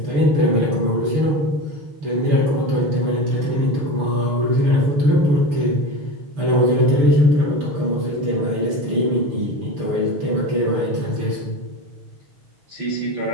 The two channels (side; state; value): left; late; 6.8 ms